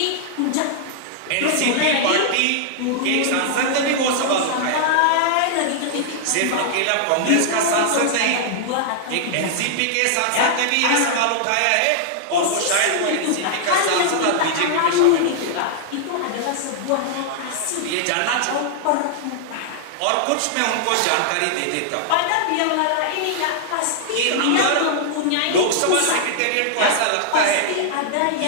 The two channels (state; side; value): different; both; correlation -0.01